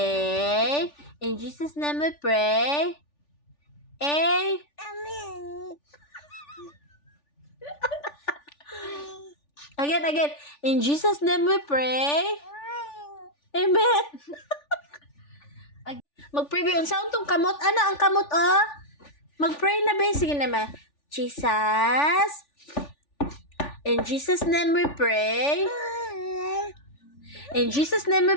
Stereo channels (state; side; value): late; right; 3.4 ms